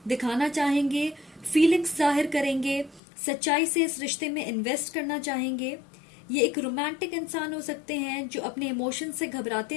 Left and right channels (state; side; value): drops out; right; at 3.0 s